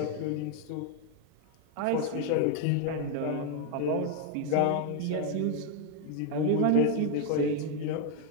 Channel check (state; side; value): different; both; correlation 0.00